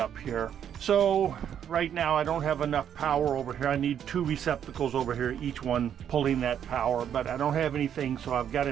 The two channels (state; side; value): quieter; left; 9.2 dB